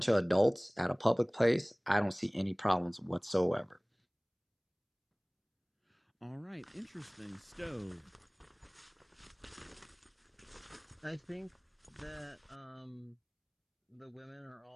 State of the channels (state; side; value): identical; both; correlation 1.00